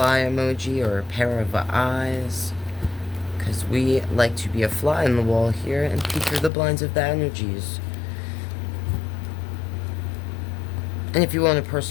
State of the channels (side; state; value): right; drops out; at 6.5 s